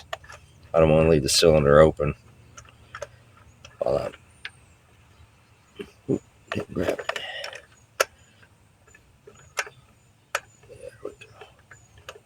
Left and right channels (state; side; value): identical; both; correlation 1.00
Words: I don't want to leave the cylinder open while I'm didn't grab it. There we